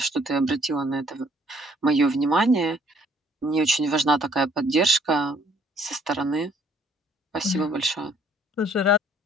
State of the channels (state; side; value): normal; both; correlation 0.63